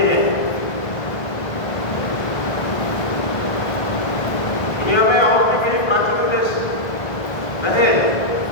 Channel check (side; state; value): right; late; 1.7 ms